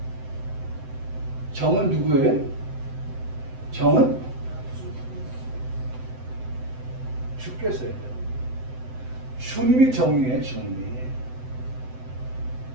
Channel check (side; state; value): left; late; 7.8 ms